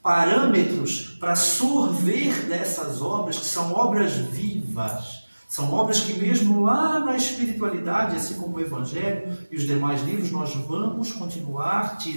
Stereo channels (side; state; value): both; inverted; correlation -1.00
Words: parâmetros para sorver dessas obras, que são obras vivas. São obras que mesmo lá na espiritualidade, assim como o Evangelho e os demais livros, nós vamos continuar